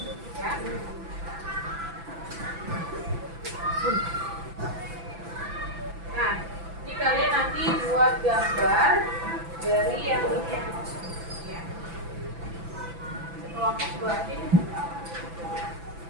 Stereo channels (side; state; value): left; late; 6.0 ms